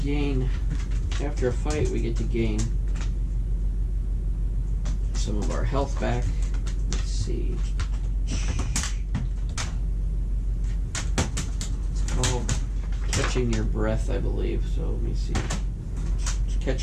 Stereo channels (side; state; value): both; identical; correlation 1.00